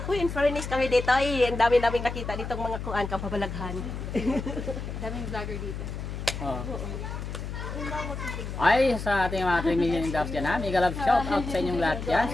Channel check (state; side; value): noise; left; hum, 6 dB below the sound